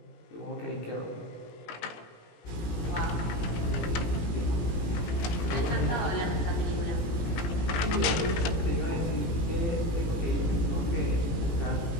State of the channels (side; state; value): right; late; 18 ms